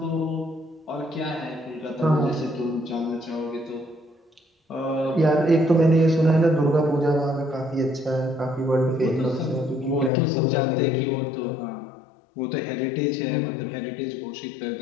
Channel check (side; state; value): right; drops out; at 10.1 s